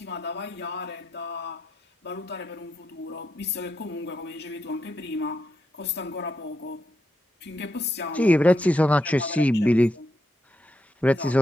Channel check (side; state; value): both; normal; correlation 0.83